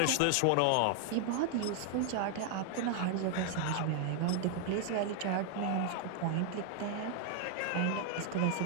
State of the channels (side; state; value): both; different; correlation 0.00